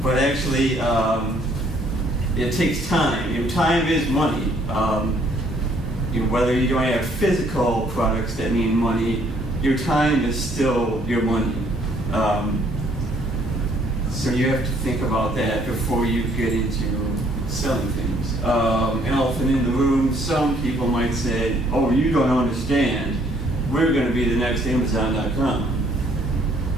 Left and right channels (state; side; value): normal; both; correlation 0.64